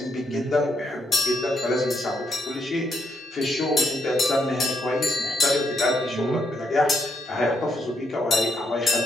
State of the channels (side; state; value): both; normal; correlation 0.77